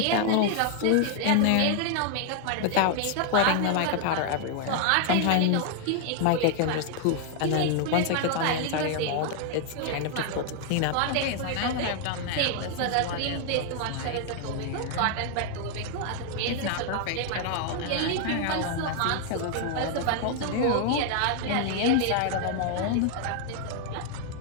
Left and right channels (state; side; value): different; both; correlation 0.00